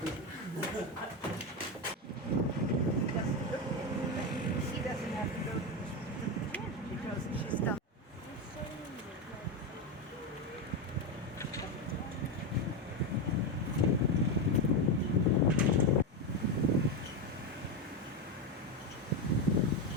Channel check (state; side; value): normal; both; correlation 0.11